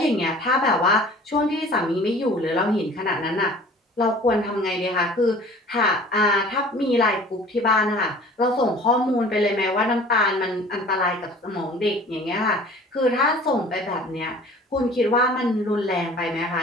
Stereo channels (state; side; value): normal; both; correlation 0.46